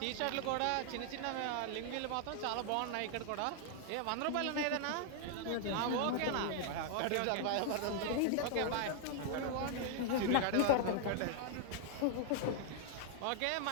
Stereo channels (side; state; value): both; different; correlation 0.00